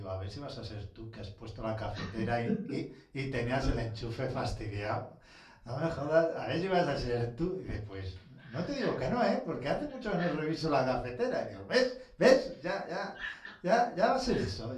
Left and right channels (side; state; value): both; identical; correlation 1.00